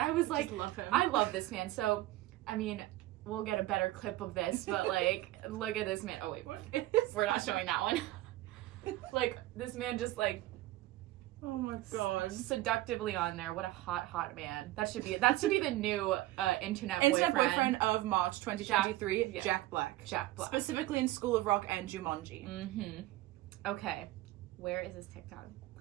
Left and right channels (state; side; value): quieter; left; 16.7 dB